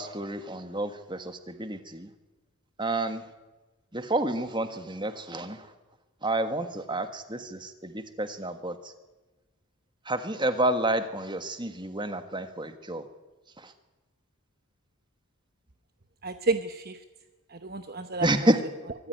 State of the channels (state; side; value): normal; both; correlation 0.36